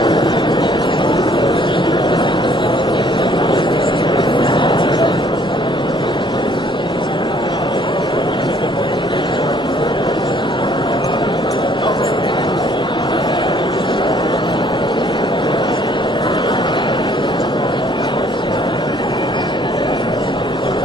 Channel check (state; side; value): normal; both; correlation 0.61